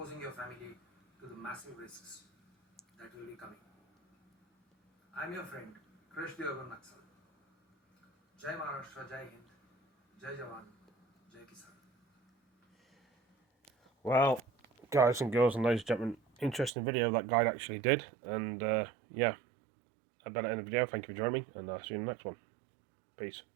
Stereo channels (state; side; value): drops out; left; at 16.7 s